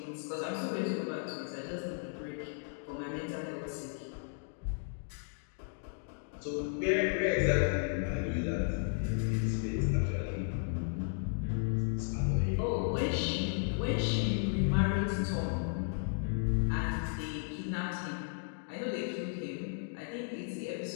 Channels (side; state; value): right; silent; digital silence